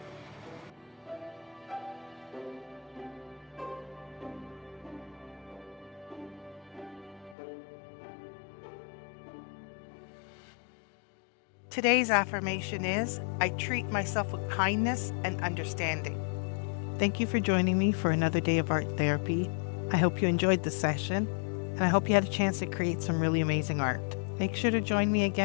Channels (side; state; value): right; drops out; at 7.4 s